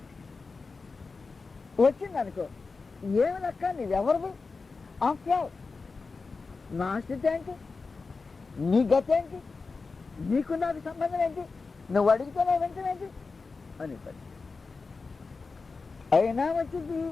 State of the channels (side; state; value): right; quieter; 4.3 dB